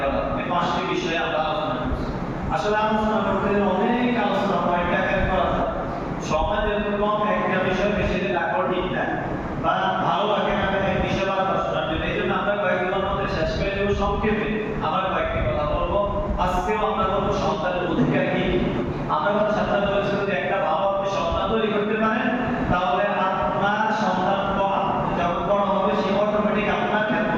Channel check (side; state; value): both; identical; correlation 1.00